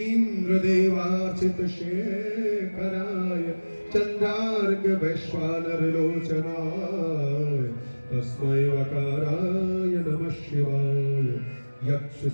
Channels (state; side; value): inverted; both; correlation -1.00